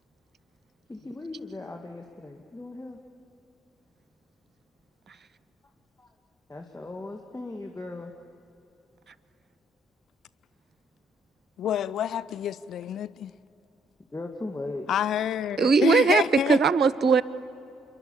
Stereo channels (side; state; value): both; normal; correlation 0.68